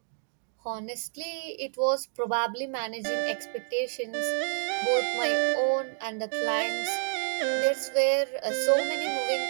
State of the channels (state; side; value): silent; left; 59 dB below the other